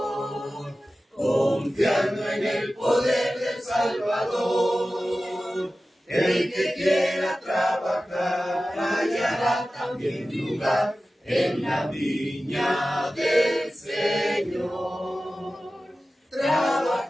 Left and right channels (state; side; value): normal; both; correlation 0.95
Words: confiando en el poder del Salvador. El que quiera trabajar hallará también lugar en la viña del Señor.